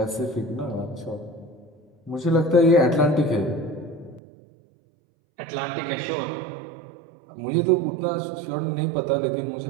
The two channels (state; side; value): drops out; left; at 4.2 s